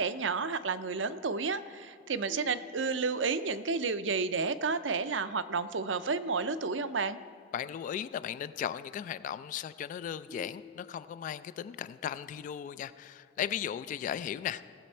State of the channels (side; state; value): both; normal; correlation -0.16